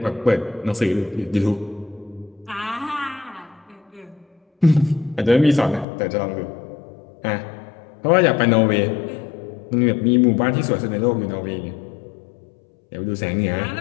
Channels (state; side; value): drops out; right; at 5.9 s